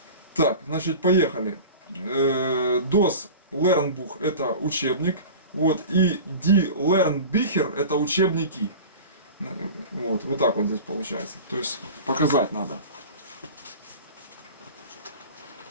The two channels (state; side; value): inverted; both; correlation -0.35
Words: Так, значит, поехали. DOS Lernbuch это учебник. Вот, и Die Lernbücher это учебники. Вот так вот здесь получается. То есть показать надо.